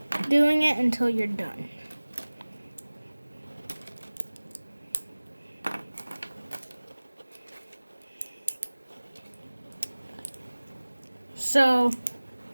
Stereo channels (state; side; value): inverted; both; correlation -1.00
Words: doing it until you're done. So